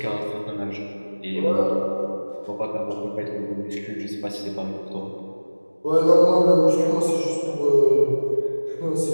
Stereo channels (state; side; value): inverted; both; correlation -1.00